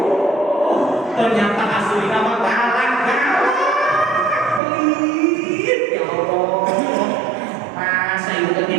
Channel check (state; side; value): drops out; left; at 4.6 s